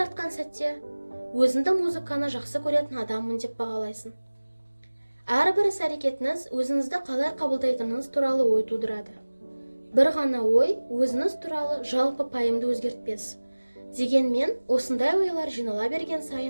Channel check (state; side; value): inverted; both; correlation -1.00